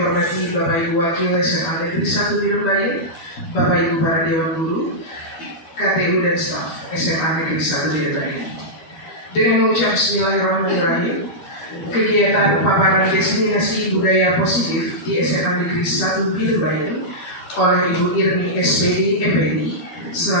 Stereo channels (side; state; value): right; late; 13 ms